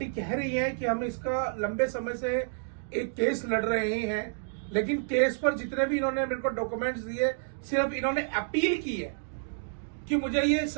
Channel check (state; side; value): silent; left; digital silence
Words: कह रही है कि हम इसका लंबे समय से एक केस लड़ रहे हैं, लेकिन केस पर जितने भी इन्होंने मेरे को डॉक्यूमेंट्स दिए, सिर्फ इन्होंने अपील की है कि मुझे ये